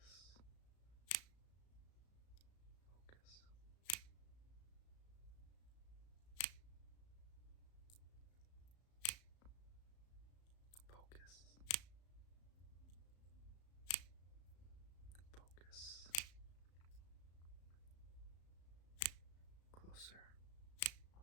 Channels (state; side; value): late; right; 35 ms